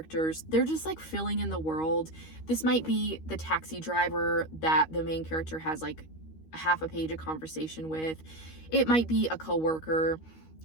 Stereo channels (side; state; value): right; late; 13 ms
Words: They're just like filling in the world. This might be the taxi driver that the main character has like half a page of conversation with. It might be a coworker